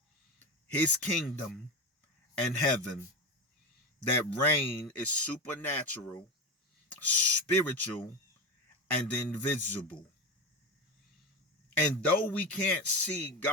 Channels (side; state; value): both; normal; correlation 0.20